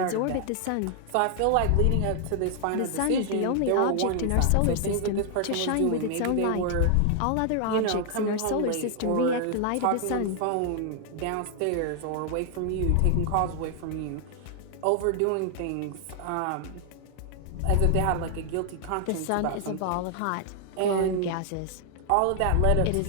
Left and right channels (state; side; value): different; both; correlation 0.00